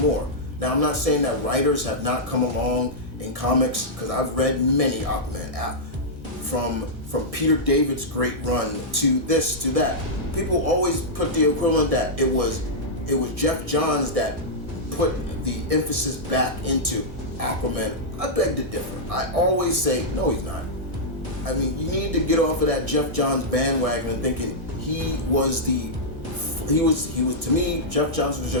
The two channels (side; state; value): left; late; 1.6 ms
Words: Now, I'm not saying that writers have not come along in comics, because I've read many Aquaman, from Peter David's great run to this to that. People always put the equivalent that it was Jeff Johns that put the emphasis back into Aquaman. I beg to differ. I always say, no, he's not. I mean, you need to get off of that Jeff Johns bandwagon and thinking he was to me, Jeff Johns was